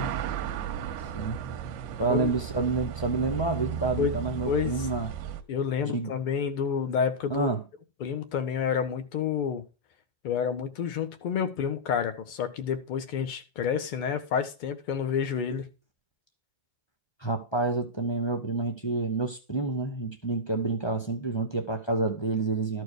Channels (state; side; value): late; right; 2.2 ms